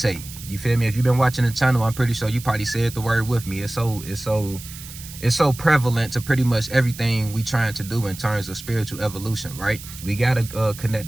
You feel me? If you've been watching the channel, I'm pretty sure you probably said the word with me. It's so prevalent to pretty much everything we trying to do in terms of spiritual evolution, right? We gotta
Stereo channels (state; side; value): noise; right; hiss, 14 dB below the sound